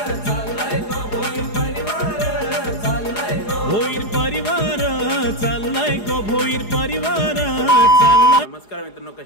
भोईर परिवार चाललाय गो भोईर परिवार चाललाय। नमस्कार मित्रांनो,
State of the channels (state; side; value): late; right; 4.8 ms